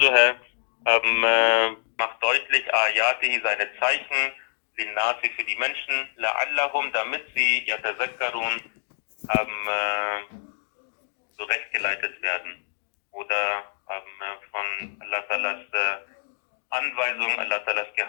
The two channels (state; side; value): silent; right; digital silence